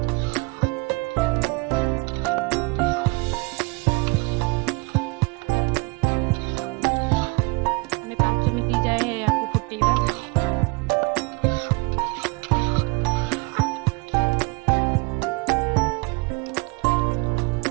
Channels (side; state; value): left; quieter; 27.4 dB